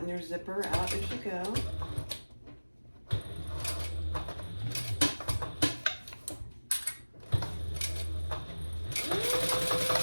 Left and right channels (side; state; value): both; inverted; correlation -1.00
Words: your zipper out as you go.